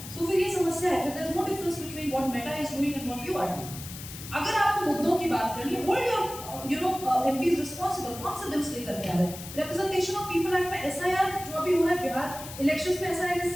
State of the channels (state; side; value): noise; left; hiss, 12 dB below the sound